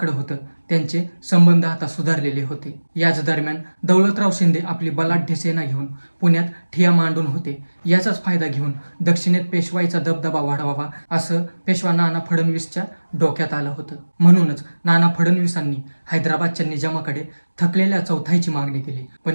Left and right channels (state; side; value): inverted; both; correlation -1.00